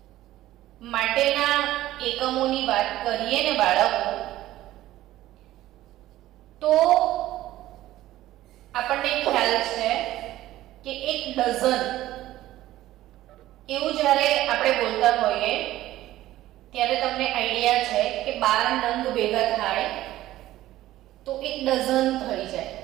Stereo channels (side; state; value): left; quieter; 15.0 dB